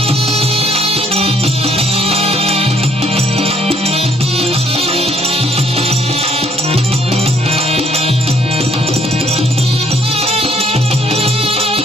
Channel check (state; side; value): normal; both; correlation 0.65